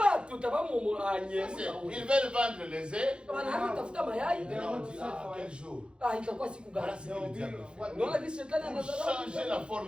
tutabamu anye. Ils veulent vendre les œufs. Wanatafuta mayai. Et on dit, ah, quel jour? Itakuwa siku gani? Voilà ce que le diable fait. Unaona jinsi shetani Pour anadharau. changer la forme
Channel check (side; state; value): left; late; 0.054 ms